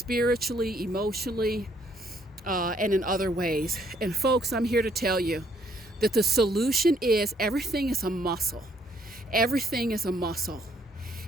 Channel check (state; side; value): normal; both; correlation 0.68